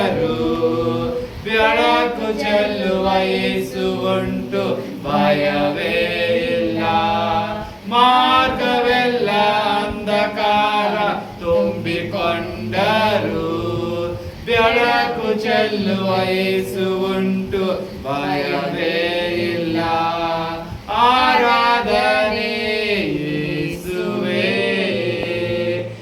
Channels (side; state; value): both; identical; correlation 1.00